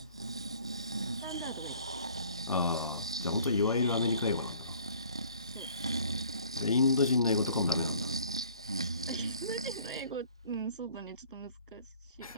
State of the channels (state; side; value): inverted; both; correlation -0.54